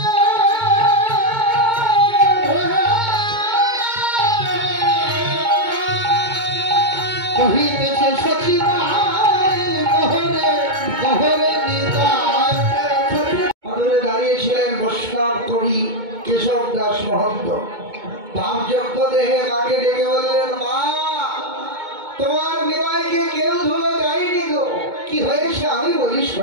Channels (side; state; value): left; late; 2.2 ms